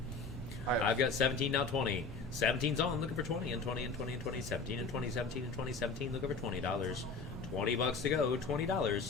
I have I've got 17, now 20. 17's on, looking for 20 and 20 and 20 and 20, 17 and 20, 17 and 20, 17, looking for $20. 20 bucks to go,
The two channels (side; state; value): right; quieter; 4.2 dB